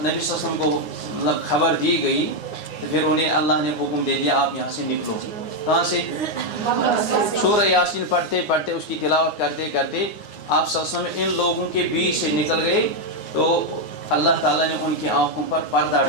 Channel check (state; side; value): late; right; 9.7 ms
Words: نبی صلی اللہ علیہ وسلم کو خبر دی گئی، تو پھر انہیں اللہ نے حکم دے دیا آپ یہاں سے نکلو۔ کہاں سے؟ سورہ یاسین پڑھتے پڑھتے، اس کی تلاوت کرتے کرتے آپ صلی اللہ علیہ وسلم ان لوگوں کے بیچ سے نکل گئے، تو اللہ تعالیٰ نے ان کی آنکھوں پر پردہ